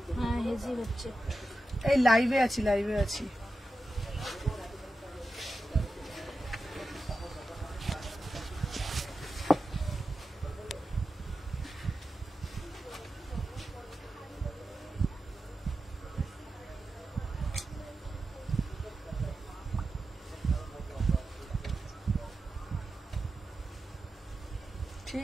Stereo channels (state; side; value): normal; both; correlation 0.91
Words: হ্যাঁ হেজি হচ্ছে। এই লাইভে আছি, লাইভে আছি।